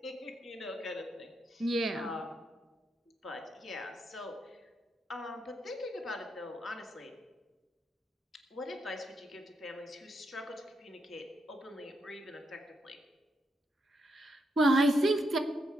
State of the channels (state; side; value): normal; both; correlation 0.80